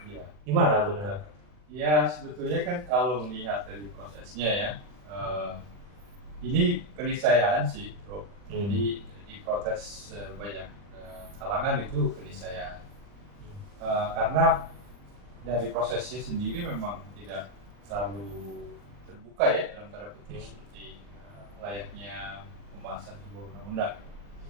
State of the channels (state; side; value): late; left; 40 ms